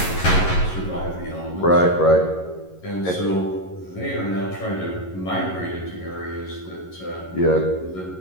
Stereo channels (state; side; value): late; right; 11 ms